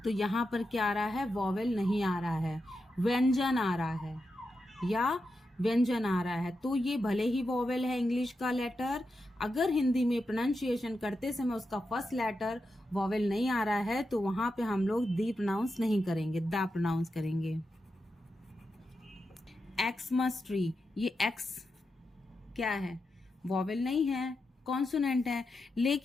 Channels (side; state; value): both; normal; correlation 0.88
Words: तो यहाँ पर क्या आ रहा है, वॉवेल नहीं आ रहा है, व्यंजन आ रहा है या व्यंजन आ रहा है। तो ये भले ही वॉवेल है इंग्लिश का लेटर, अगर हिंदी में प्रोनाउंसिएशन करते समय उसका फर्स्ट लेटर वॉवेल नहीं आ रहा है तो वहां पे हम लोग दी प्रोनाउंस नहीं करेंगे, दा प्रोनाउंस करेंगे। एक्समस ट्री, ये एक्स क्या है, वॉवेल नहीं है, कॉन्सोनेंट है,